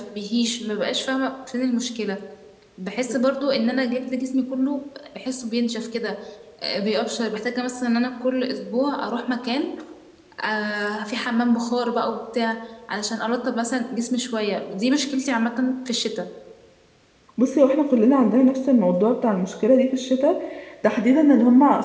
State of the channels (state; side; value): identical; both; correlation 1.00